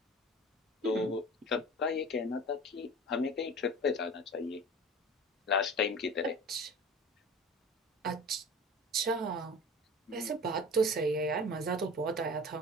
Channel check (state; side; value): normal; both; correlation 0.38